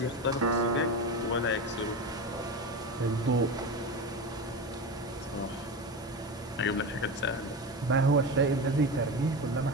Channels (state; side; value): normal; both; correlation 0.23